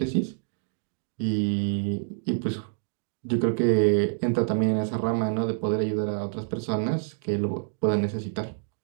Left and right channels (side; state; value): left; silent; digital silence